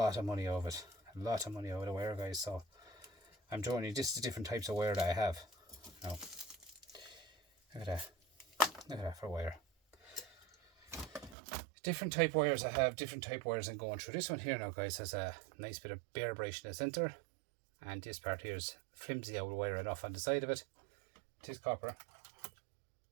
of money out of it. A lot of money out of the wire, guys. So I'm showing you just the different types of wire that I have. Now, look at that. Look at that for wire. Different type wires I have, different type wires I'm going through. This one here now, guys, has a nice bit of bare brush in the centre, and this part here is flimsy old wire enough on the side of it. It is copper.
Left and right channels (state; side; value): drops out; left; at 11.4 s